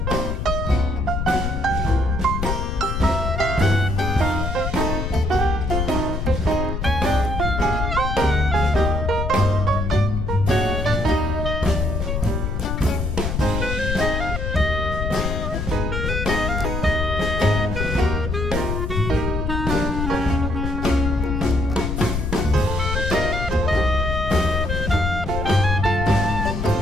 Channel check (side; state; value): left; noise; rumble, 2 dB below the sound